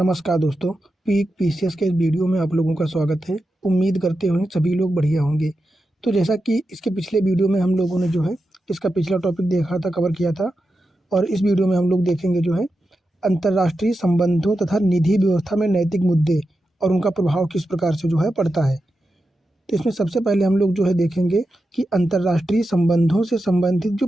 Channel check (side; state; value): both; normal; correlation 0.90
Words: दोस्तों, peak PCS के इस वीडियो में आप लोगों का स्वागत है। उम्मीद करते हुए सभी लोग बढ़िया होंगे। तो जैसा कि इसके पिछले वीडियो में हम लोगों ने जो है इसका पिछला टॉपिक देखा था, कवर किया था, और इस वीडियो में हम लोग देखेंगे जो है अंतर्राष्ट्रीय संबंधों तथा निधि व्यवस्था में नैतिक मुद्दे और उनका प्रभाव किस प्रकार से जो है पड़ता है। तो इसमें सबसे पहले हम लोग जो है देखेंगे कि अंतर्राष्ट्रीय संबंधों से संबंधित जो